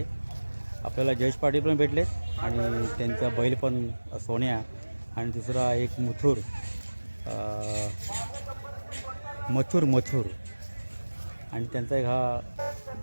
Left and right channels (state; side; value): inverted; both; correlation -1.00